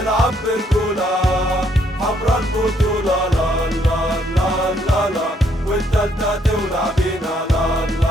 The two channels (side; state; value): both; normal; correlation 0.70